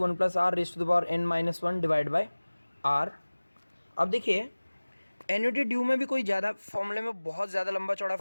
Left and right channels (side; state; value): both; inverted; correlation -1.00